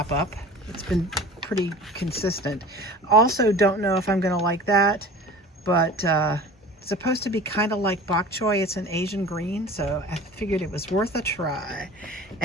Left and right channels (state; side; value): normal; both; correlation 0.40